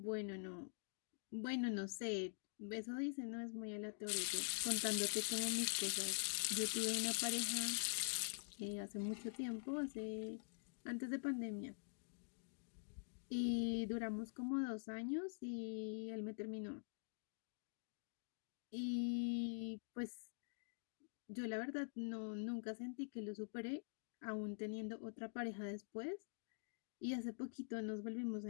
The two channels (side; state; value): right; silent; digital silence